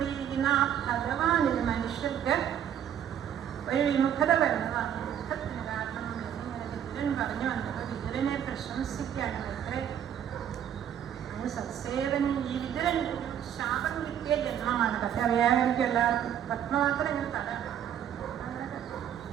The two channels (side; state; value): left; quieter; 9.6 dB